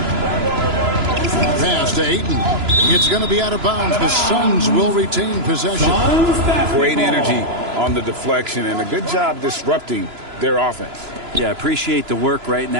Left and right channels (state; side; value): late; left; 3.0 ms